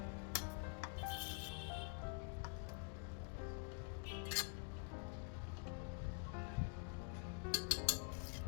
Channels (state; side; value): quieter; right; 39.5 dB